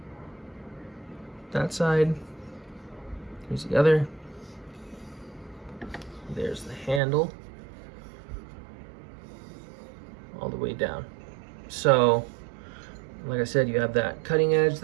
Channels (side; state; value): left; drops out; at 7.0 s